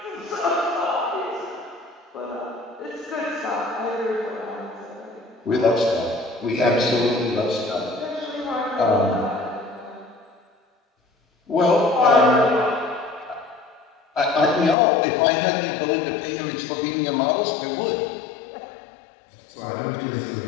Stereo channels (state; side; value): drops out; right; at 14.8 s